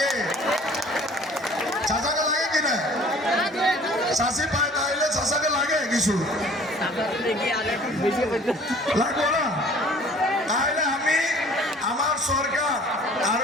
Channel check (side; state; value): both; normal; correlation 0.51